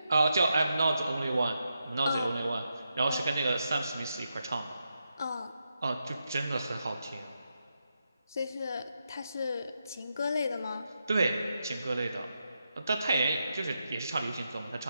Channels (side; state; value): both; inverted; correlation -0.85